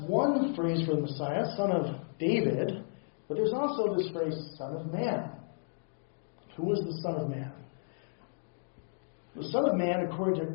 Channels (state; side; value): silent; right; digital silence